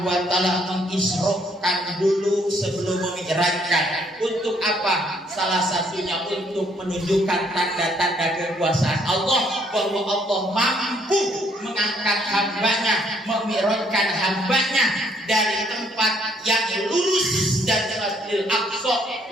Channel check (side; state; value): both; normal; correlation 0.67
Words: wa taala mengisrokan dulu sebelum memi'rajkan? Untuk apa? Salah satunya untuk menunjukkan tanda-tanda kekuasaan Allah, bahwa Allah mampu mengangkat hambanya, memi'rajkan hambanya dari tempat yang lurus dan Masjidil Aqsa